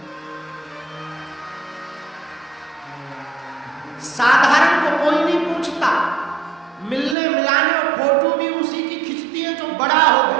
साधारण को कोई नहीं पूछता, मिलने मिलाने और फोटो भी उसी की खिंचती है जो बड़ा हो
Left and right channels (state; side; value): drops out; left; at 7.2 s